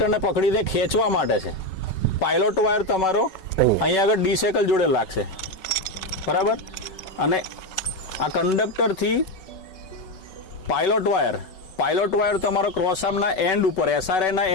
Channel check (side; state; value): right; late; 5.3 ms